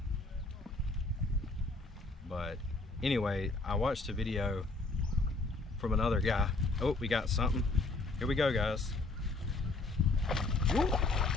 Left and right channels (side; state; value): right; quieter; 3.4 dB